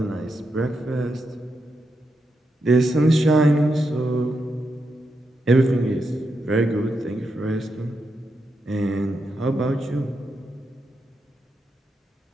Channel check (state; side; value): normal; both; correlation 0.85